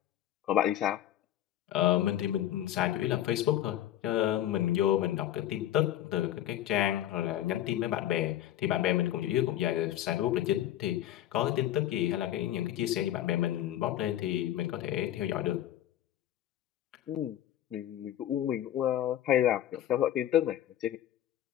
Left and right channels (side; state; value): right; quieter; 12.3 dB